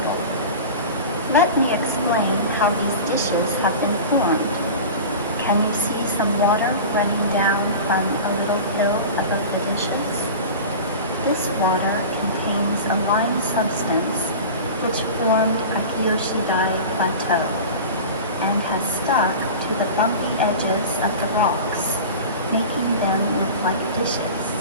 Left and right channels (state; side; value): inverted; both; correlation -0.33